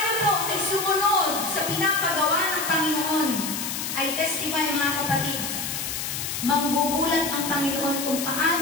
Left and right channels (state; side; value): noise; left; hiss, 4 dB below the sound